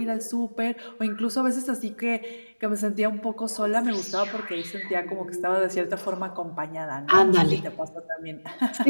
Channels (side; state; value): both; inverted; correlation -1.00